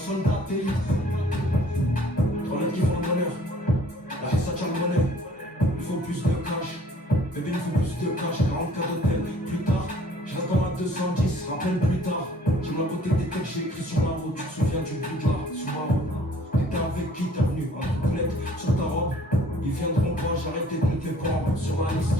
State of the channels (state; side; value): normal; both; correlation 0.56